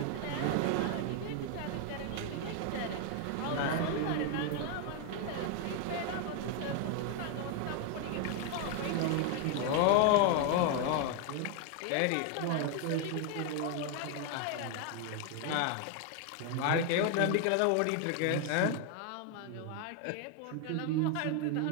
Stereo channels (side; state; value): both; different; correlation 0.01